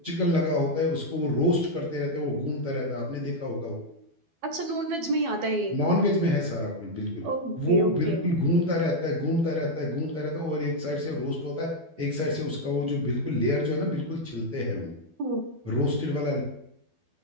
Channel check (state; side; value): late; left; 12 ms